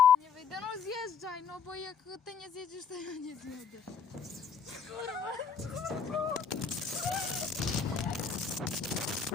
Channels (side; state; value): right; quieter; 6.4 dB